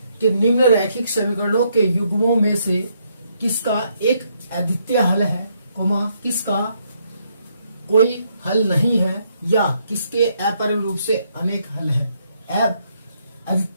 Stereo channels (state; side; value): inverted; both; correlation -0.74